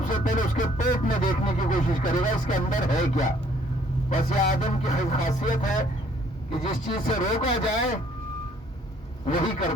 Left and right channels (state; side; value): normal; both; correlation 0.61